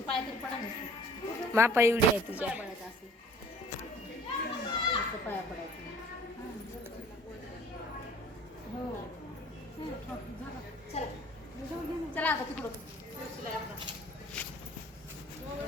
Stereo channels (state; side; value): normal; both; correlation 0.51